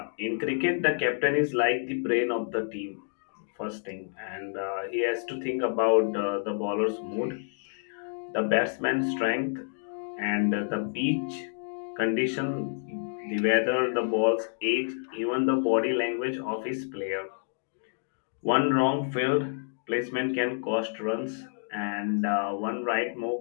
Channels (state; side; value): silent; right; digital silence